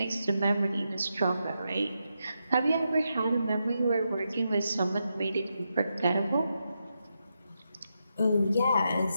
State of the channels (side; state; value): both; inverted; correlation -0.85